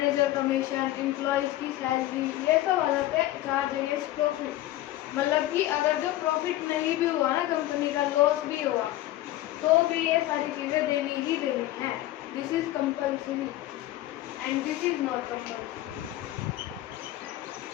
कमीशन, एम्प्लॉयज की सैलरी, ये सब आ जाते हैं चार्ज अगेंस्ट प्रॉफिट। मतलब कि अगर जो प्रॉफिट नहीं भी हुआ ना, कंपनी का लॉस भी हुआ, तो भी ये सारी चीजें देनी ही देनी है। This is compulsory and this is not compulsory.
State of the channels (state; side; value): quieter; right; 15.3 dB